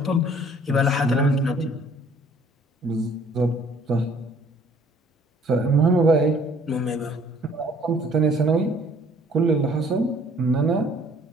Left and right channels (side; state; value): both; normal; correlation 0.58